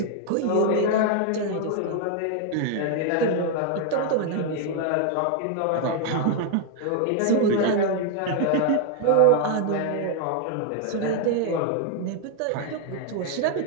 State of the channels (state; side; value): different; both; correlation 0.00